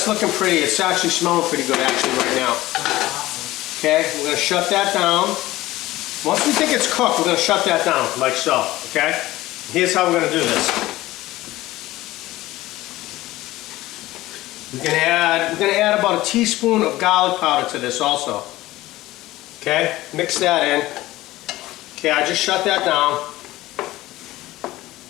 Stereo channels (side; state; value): right; quieter; 17.2 dB